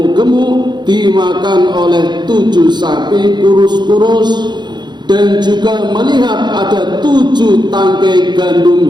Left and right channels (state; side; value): late; left; 0.21 ms